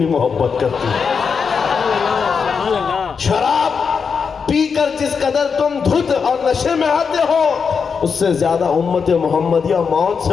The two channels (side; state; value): right; quieter; 5.9 dB